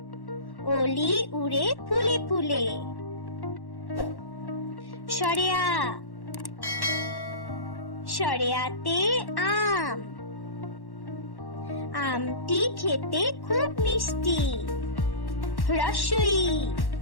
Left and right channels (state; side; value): late; right; 1.1 ms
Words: অলি উড়ে ফুলে ফুলে। শরেয়া শরেয়াতে আম, আমটি খেতে খুব মিষ্টি। রসই